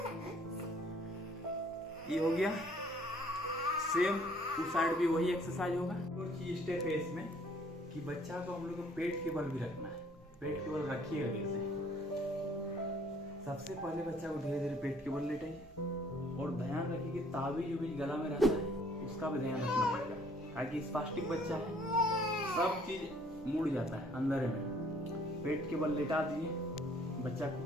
ये हो गया। सेम उस साइड भी वही एक्सरसाइज होगा। और चीज स्टेप है इसमें कि बच्चा को हम लोग को पेट के बल भी रखना है। पेट के बल रखिएगा कैसे? सबसे पहले बच्चा को धीरे धीरे पेट के बल लेटाइए और ध्यान रखिए कि ताबीज जो बीच गला में रहता है उसका भी ध्यान रखना पड़ेगा, ताकि स्पास्टिक बच्चा है, सब चीज मुड़ जाता है अंदर में। पेट के बल लेटा दीजिए बच्चा को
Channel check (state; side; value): normal; both; correlation 0.60